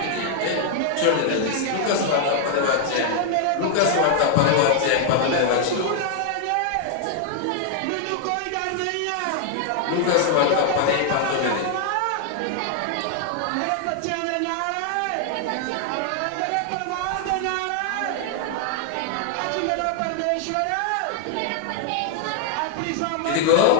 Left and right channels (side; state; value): both; different; correlation 0.00